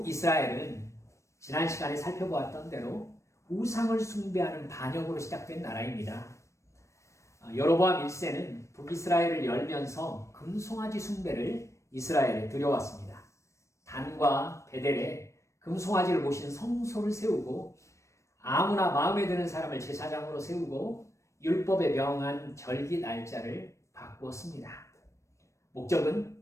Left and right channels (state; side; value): late; right; 0.15 ms